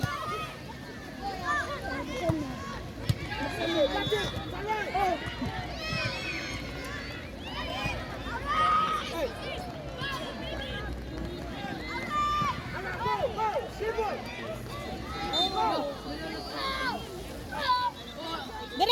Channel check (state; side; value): identical; both; correlation 1.00